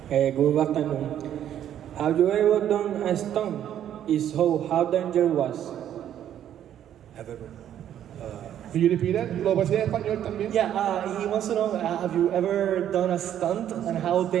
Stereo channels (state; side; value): quieter; left; 10.6 dB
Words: good afternoon. Have you ever done a stunt? If so, how dangerous was? Have ever? Can you repeat it? ¿Lo puedes decir en español también? Yeah, he wants to know, have you ever done a stunt and how